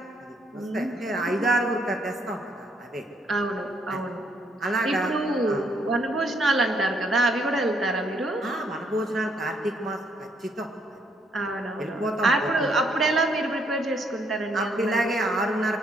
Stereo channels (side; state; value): both; normal; correlation 0.70